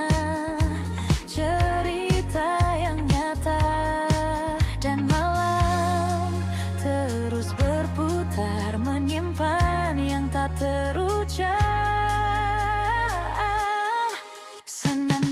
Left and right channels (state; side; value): identical; both; correlation 1.00